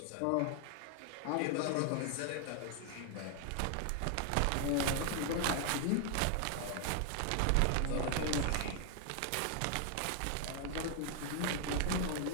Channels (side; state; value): both; different; correlation 0.00